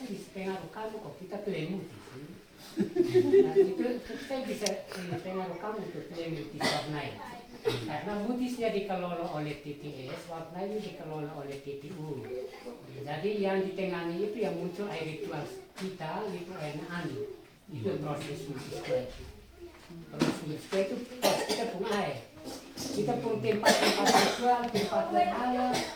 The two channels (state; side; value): identical; both; correlation 1.00